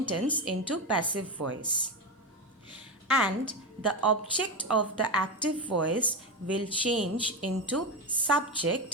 into passive voice. And the object of the active voice will change into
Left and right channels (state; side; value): normal; both; correlation 0.15